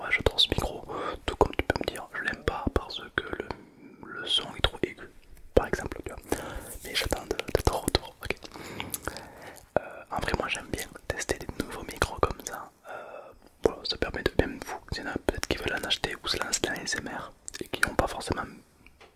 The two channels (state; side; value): identical; both; correlation 1.00